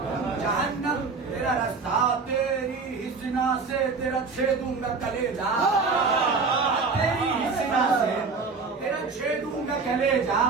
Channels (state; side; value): quieter; left; 4.6 dB